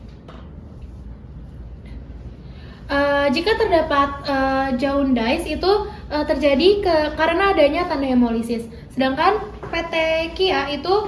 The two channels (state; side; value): identical; both; correlation 1.00